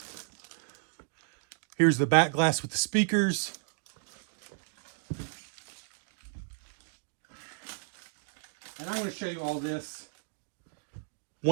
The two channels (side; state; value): left; silent; digital silence